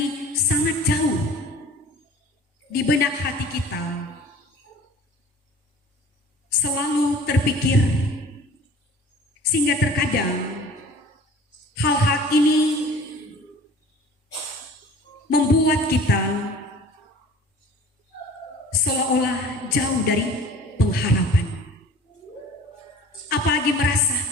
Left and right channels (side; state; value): both; normal; correlation 0.45